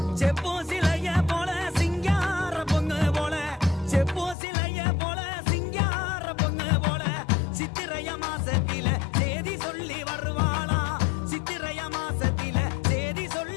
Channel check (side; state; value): right; drops out; at 4.4 s